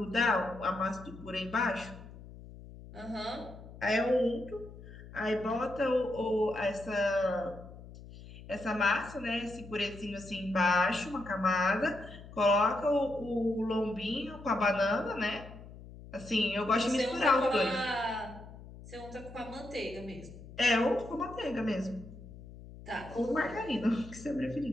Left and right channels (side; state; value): left; noise; hum, 16 dB below the sound